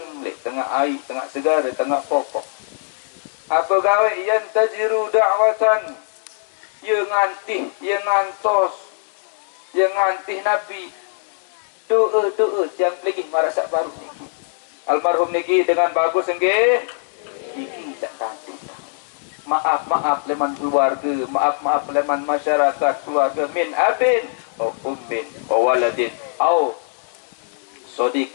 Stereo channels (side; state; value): right; silent; digital silence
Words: lek tengah air, tengah segara, tengah pokok. Apa gawe yang tajiru da'watan, ye ngantih, ye ngantos, ye ngantih nabi doa yang pelih marasak baru niki. Almarhum niki dengan bagus nggih. Niki sak tantih. Maaf leman keluarga, maaf leman masyarakat keluarga, min abin au ummin wa waladin au